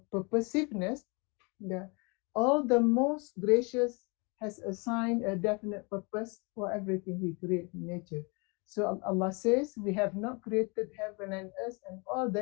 purposiveness, yeah. All the most gracious has assigned a definite purpose for everything He created in nature. So Allah says, we have not created heaven and earth and all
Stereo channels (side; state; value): right; quieter; 31.1 dB